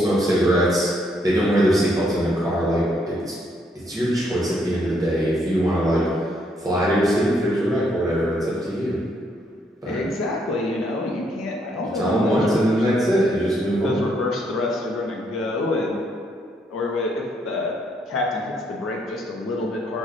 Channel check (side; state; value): both; normal; correlation 0.72